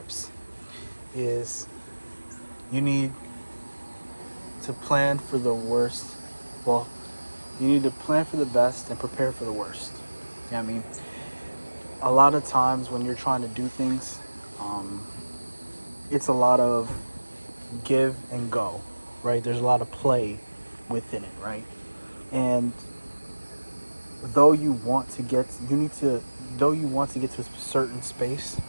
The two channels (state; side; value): inverted; both; correlation -1.00